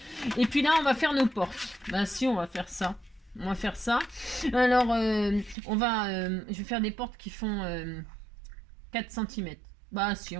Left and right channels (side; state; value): left; drops out; at 5.6 s